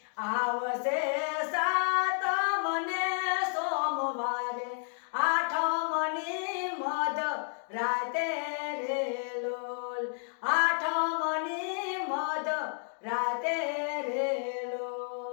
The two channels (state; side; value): silent; right; 56 dB below the other